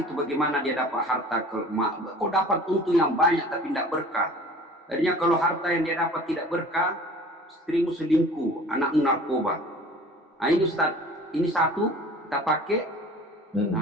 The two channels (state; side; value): normal; both; correlation 0.45